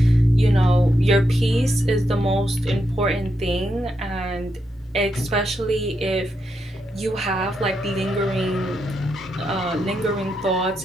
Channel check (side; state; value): both; normal; correlation 0.83